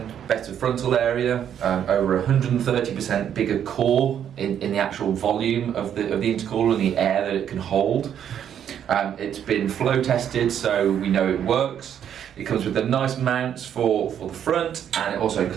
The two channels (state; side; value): quieter; left; 9.3 dB